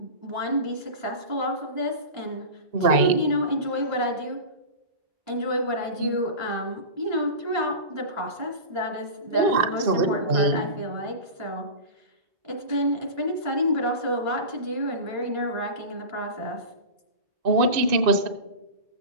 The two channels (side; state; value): left; late; 2.5 ms